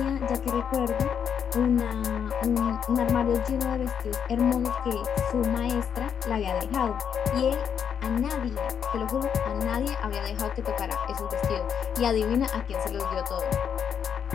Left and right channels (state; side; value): quieter; right; 7.9 dB